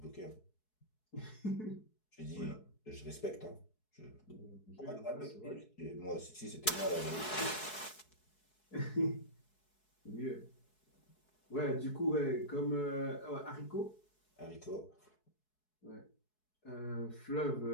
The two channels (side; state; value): right; late; 4.7 ms